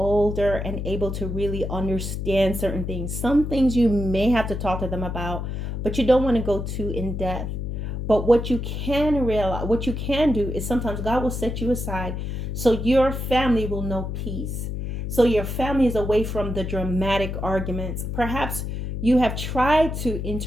and able to really understand certain things. Some things you may have to talk to them about, but you don't want to go too in depth. But what you can do is sometimes God will set you aside so your family will know peace. So your family is away from the dramatic arguments. Perhaps you have tried to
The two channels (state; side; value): noise; left; hum, 4 dB below the sound